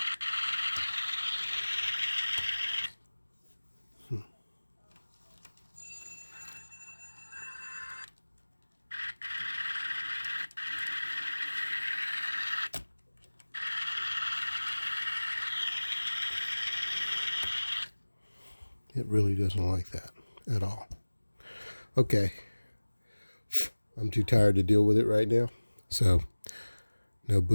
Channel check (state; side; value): inverted; both; correlation -1.00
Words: It really doesn't like that at all. Okay. I'm too tired to deal with it right now. So, no